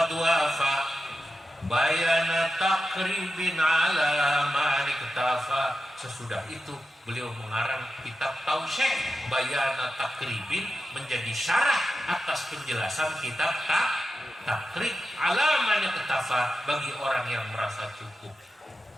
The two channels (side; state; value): both; normal; correlation 0.91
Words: wafa bayana takribin ala man iktafa. Sesudah itu beliau mengarang kitab Tausyih Bayana Takribin, menjadi syarah atas penjelasan kitab Takrib ala man iktafa, bagi orang yang merasa cukup.